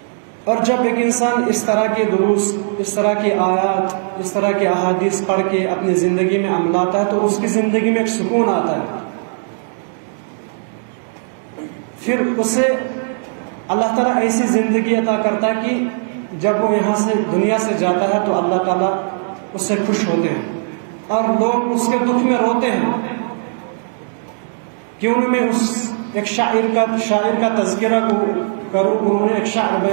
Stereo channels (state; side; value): silent; left; 67 dB below the other